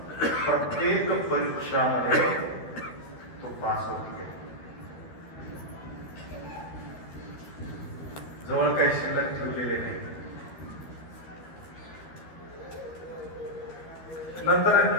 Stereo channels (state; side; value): late; right; 13 ms